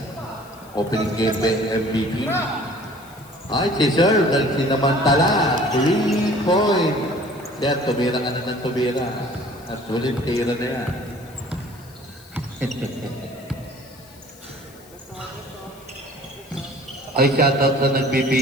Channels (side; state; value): left; noise; hiss, 24 dB below the sound